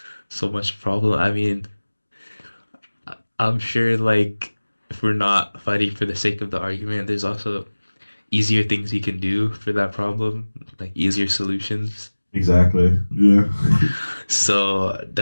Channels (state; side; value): inverted; both; correlation -1.00